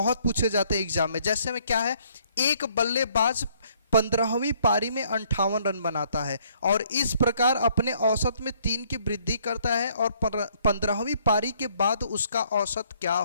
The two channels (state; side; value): inverted; both; correlation -0.65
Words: पूछे जाते हैं एग्जाम में, जैसे में क्या है, एक बल्लेबाज 15वीं पारी में 58 रन बनाता है और इस प्रकार अपने औसत में 3 की वृद्धि करता है, और 15वीं पारी के बाद उसका औसत क्या